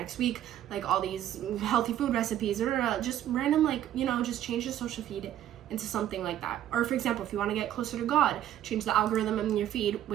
week. Like all these healthy food recipes, or just random, like, you know, just change your social feed into something like that. Or for example, if you want to get closer to God, change the algorithm in your feed,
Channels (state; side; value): quieter; left; 11.8 dB